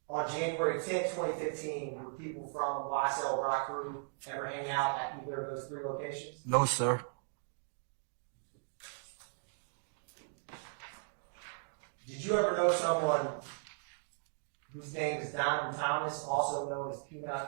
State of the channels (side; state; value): left; silent; digital silence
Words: On January 10th, 2015, would people from YSL Rock Crew ever hang out at either of those 3 locations? No, sir. Did you ever know someone whose name is Donovan Thomas, also known as